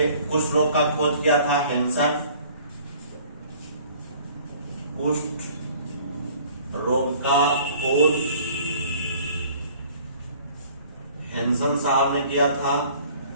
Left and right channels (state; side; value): inverted; both; correlation -0.53